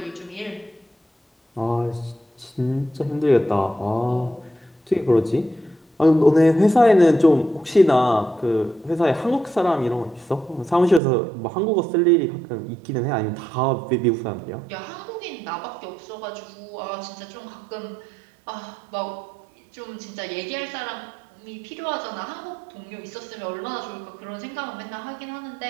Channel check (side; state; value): left; drops out; at 11.0 s